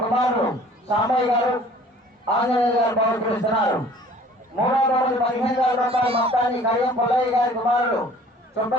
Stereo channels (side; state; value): both; normal; correlation 0.51